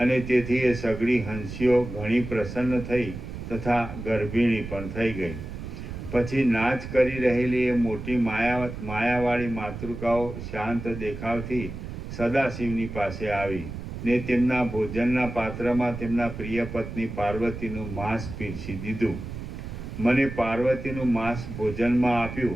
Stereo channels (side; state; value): right; noise; rumble, 9 dB below the sound